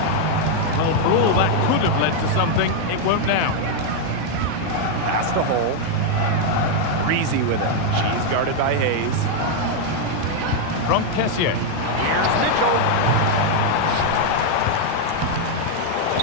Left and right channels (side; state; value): both; different; correlation 0.00